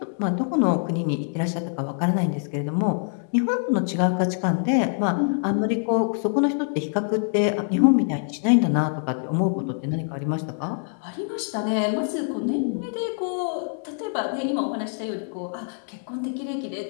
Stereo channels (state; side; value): silent; right; 62 dB below the other